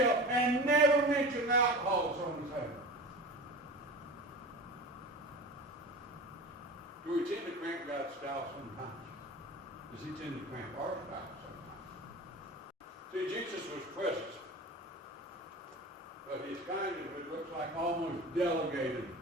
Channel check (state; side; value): normal; both; correlation 0.33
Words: and never mention alcohol at someone's table. Do we tend to cramp God's style sometimes? Does he tend to cramp our style sometimes? See, Jesus was present, but his kindness, it looks like, almost delegated